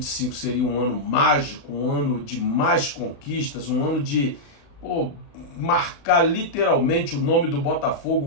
seria um ano mágico, um ano de mais conquistas, um ano de marcar literalmente o nome do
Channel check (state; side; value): late; right; 36 ms